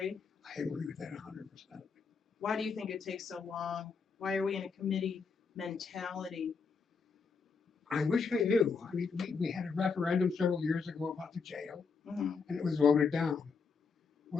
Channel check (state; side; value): quieter; right; 5.2 dB